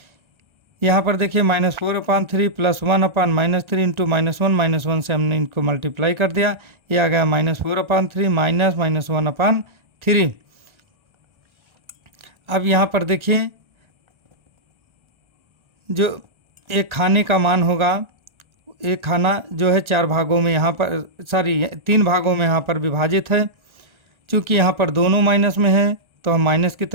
यहाँ पर देखिए -4/3 प्लस 1/-3 इंटू -1 से हमने इनको मल्टीप्लाई कर दिया, ये आ गया -4/3 माइनस -1/3। अब यहाँ पर देखिए जो एक खाने का मान होगा, एक खाना जो है 4 भागों में यहाँ पर 3 भागों में यहाँ पर विभाजित है। चूँकि यहाँ पर दोनों माइनस में है तो हम माइनस की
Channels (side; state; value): left; late; 1.4 ms